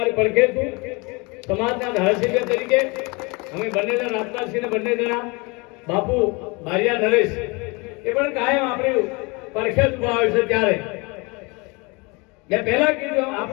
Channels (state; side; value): quieter; right; 27.7 dB